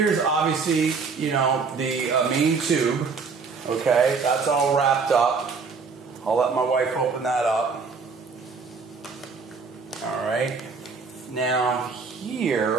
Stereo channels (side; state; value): left; quieter; 4.9 dB